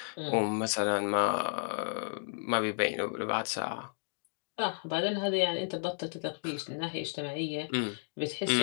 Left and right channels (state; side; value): silent; right; 56 dB below the other